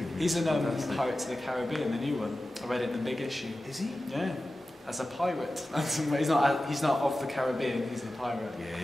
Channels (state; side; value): normal; both; correlation 0.94